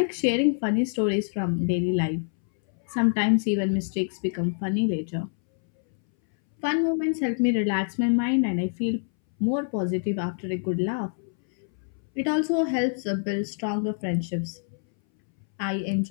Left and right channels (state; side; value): silent; right; 61 dB below the other